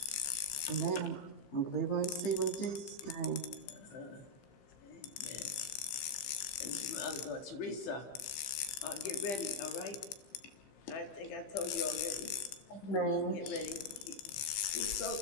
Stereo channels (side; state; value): right; late; 15 ms